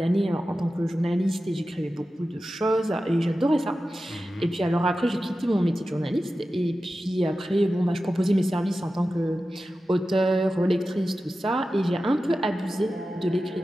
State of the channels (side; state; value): both; normal; correlation 0.93